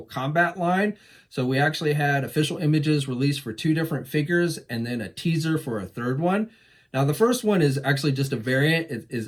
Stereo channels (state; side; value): identical; both; correlation 1.00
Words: Kombat line. So we actually had official images released for 2 different figures and then a teaser for a third one. Now the first one is actually just a variant. It